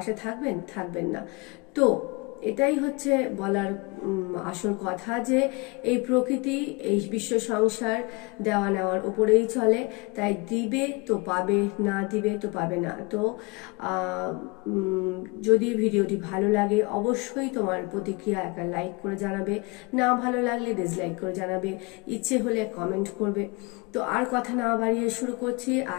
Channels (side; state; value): right; quieter; 27.8 dB